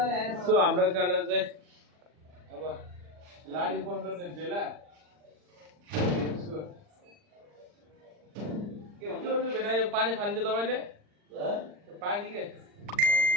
सो हाम्रो काले चाहिँ अब लाडी बन्द गर्ने बेला के भन्छ भेना यो पानी फाल्ने तपाईँले पानी के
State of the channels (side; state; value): left; late; 40 ms